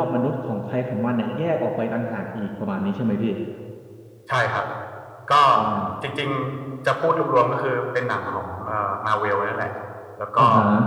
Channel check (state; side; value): identical; both; correlation 1.00